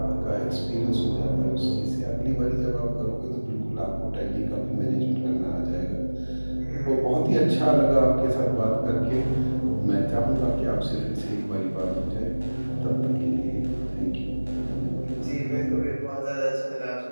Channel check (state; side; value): inverted; both; correlation -1.00